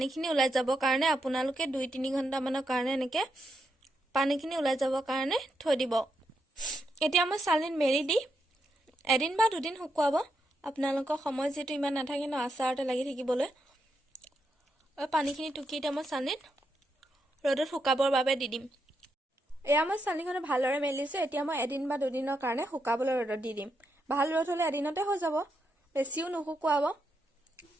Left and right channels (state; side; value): normal; both; correlation 0.82